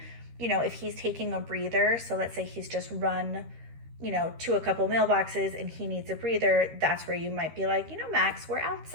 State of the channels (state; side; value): late; left; 13 ms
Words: if he's taking a breather, so let's say he's just run, to a couple mailboxes and he needs a breather, that's where you might be like, Max, we're